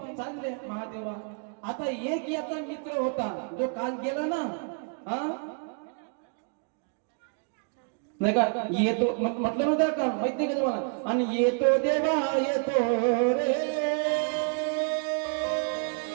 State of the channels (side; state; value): left; quieter; 39.9 dB